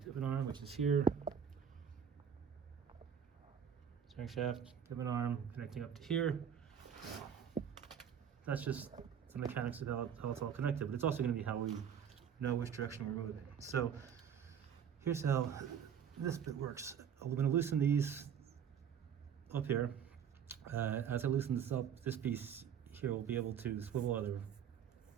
which is here. Steering shaft, pivot arm connecting up to here. That's just the mechanics of how it's all connected, but it's also going to be how we know which direction we're moving. So here's how this bit works. I'm going to loosen these up here. As I loosen this up, this piece here will be able to swivel either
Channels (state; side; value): quieter; left; 8.0 dB